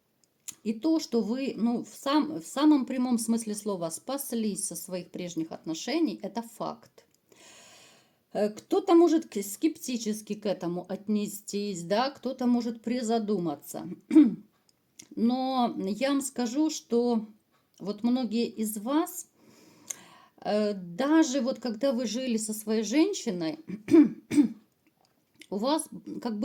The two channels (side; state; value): both; identical; correlation 1.00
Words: И то, что вы, ну, в самом прямом смысле слова спаслись со своих прежних отношений, это факт. Кто-то может скептически к этому отнестись, да, кто-то может призадуматься. Но я вам скажу, что вот многие из вас, даже вот когда вы жили со своей женщиной, у вас, как